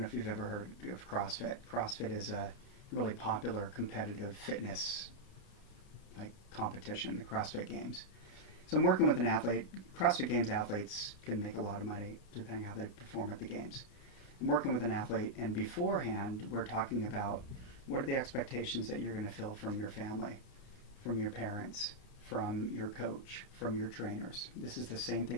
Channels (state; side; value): late; right; 29 ms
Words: if you've ever heard of CrossFit. CrossFit is a really popular competitive fitness competition, the CrossFit Games. So I'm working with an athlete. CrossFit Games athletes can make a lot of money depending on how they perform at the games. I'm working with an athlete, and beforehand we're talking about what are the expectations that you're going to feel from your family, from your parents, from your coach, from your trainers. This is the same